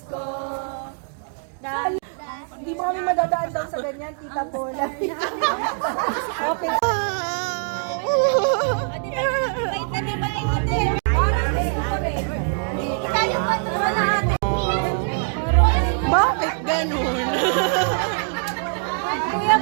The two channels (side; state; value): left; silent; 64 dB below the other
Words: Hindi mo kami madadaan daw sa ganyan, Tita Paula. Okay. Bakit ganun? Kuya,